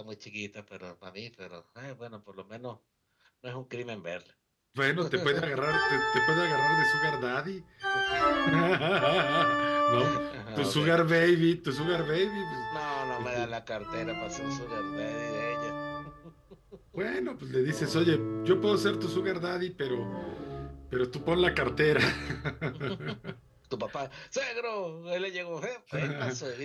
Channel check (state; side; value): identical; both; correlation 1.00